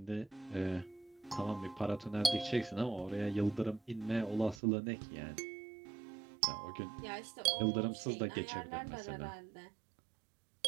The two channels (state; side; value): drops out; left; at 4.6 s